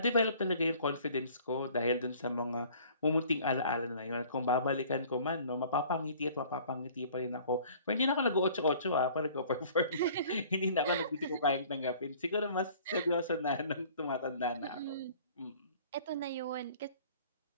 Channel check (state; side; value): inverted; both; correlation -0.51